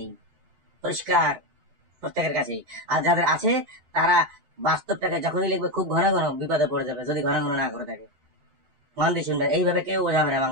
পরিষ্কার প্রত্যেকের কাছেই। আর যাদের আছে তারা বাস্তবটাকে যখনই লিখবে খুব ঘন ঘন বিপদে পড়ে যাবে, যদি ঘন ঘন না করে থাকে। মন দিয়ে শুনবেন, এইভাবে কেউ বোঝাবে না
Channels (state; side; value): late; left; 7.9 ms